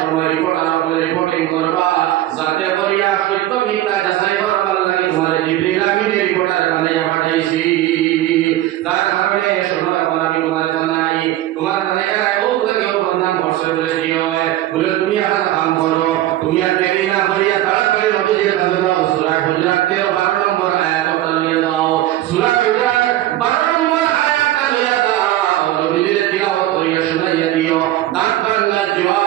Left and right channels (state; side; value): quieter; left; 14.4 dB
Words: রিপোর্ট আর রিপোর্টিং করবা যাতে করিয়া সত্য মিথ্যা যাচাই করবার লাগে তোমার জিবরিল আমিন রিপোর্টার বানাইয়া পাঠাইছি তার কারণে সময় আমি তোমার জানাই তোমার জানাইয়া ও লাগে বদনাম করছে বলে কি হয় বলে তুমি একটা কাম করো তুমি আর দেরি না করিয়া তাড়াতাড়ি নবীজির কাছে যাও সূরা হুজরাত 12 নম্বর আয়াতটা নিয়ে দাও সূরা হুজরাত 12 নম্বর আয়াতটা নিয়ে দাও নবীজির তিলাওয়াত করিয়া শুনাইয়া দিও দাঁত ভাঙা